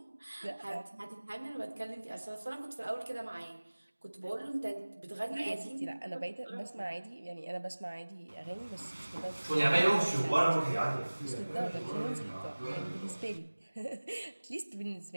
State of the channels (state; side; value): inverted; both; correlation -1.00